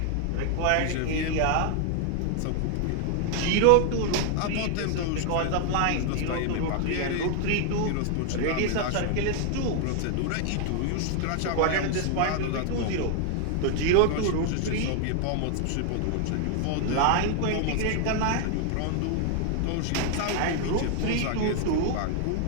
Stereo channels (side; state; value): both; different; correlation 0.00